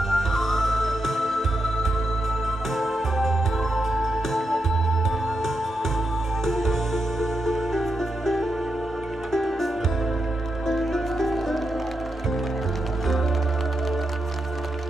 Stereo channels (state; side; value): normal; both; correlation 0.85